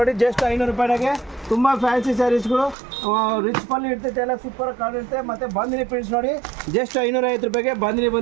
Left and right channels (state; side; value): drops out; left; at 2.8 s